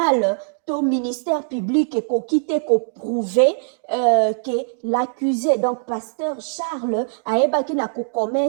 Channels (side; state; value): left; silent; digital silence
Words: to ministère public ekoki te ko prouver que l'accusé, donc pasteur Charles, ayebaki na ko